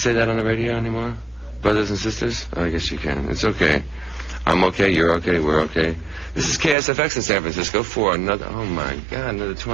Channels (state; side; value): drops out; left; at 6.8 s